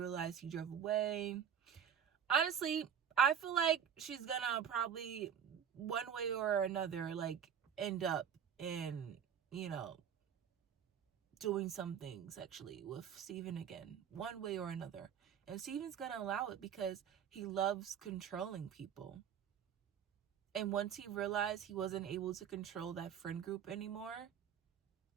he drove away. Honestly, I feel like she's gonna probably one way or another like end up in, you know, doing something sexually with Steven again, one way or another. And Steven's gonna allow it because he loves controlling people. And once he realized he wasn't able to control that friend group anymore,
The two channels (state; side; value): quieter; left; 8.5 dB